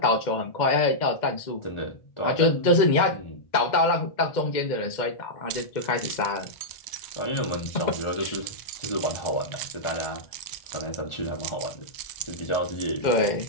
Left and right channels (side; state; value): right; late; 2.1 ms